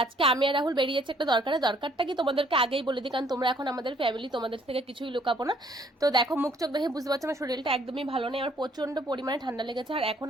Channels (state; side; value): normal; both; correlation 0.63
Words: আজকে আমি আর রাহুল বেরিয়ে যাচ্ছি একটা দরকারটা কি তোমাদেরকে আগেই বলে দিই, কারণ তোমরা এখন আমাদের ফ্যামিলি, তোমাদের থেকে কিছুই লুকাবো না। তো দেখো, মুখ চোখ দেখে বুঝতে পারছো আমার শরীরটা একদমই ভালো নেই, আমার প্রচন্ড পরিমাণে ঠান্ডা লেগেছে। আর এখন